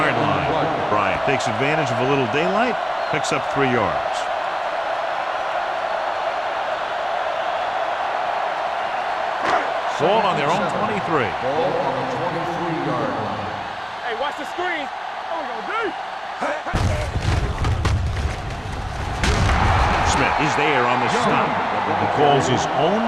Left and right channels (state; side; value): identical; both; correlation 1.00